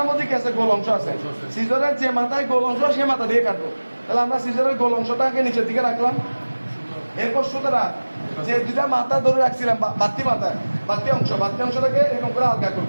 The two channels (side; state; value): both; inverted; correlation -1.00